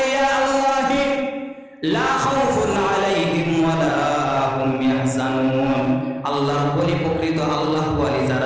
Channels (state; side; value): identical; both; correlation 1.00